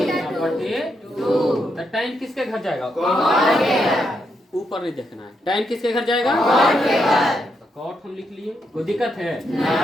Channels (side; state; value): both; normal; correlation 0.80